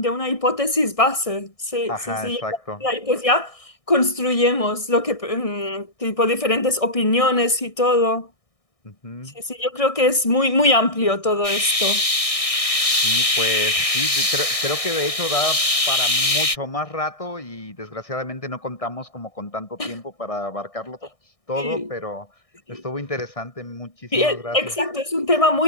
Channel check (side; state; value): right; late; 1.6 ms